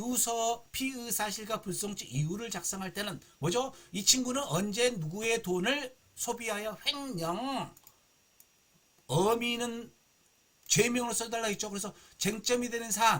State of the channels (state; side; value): identical; both; correlation 1.00